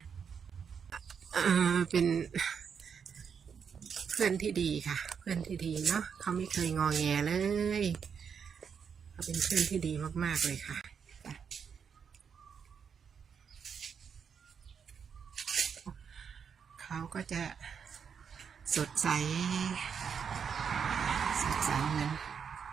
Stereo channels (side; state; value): left; quieter; 6.8 dB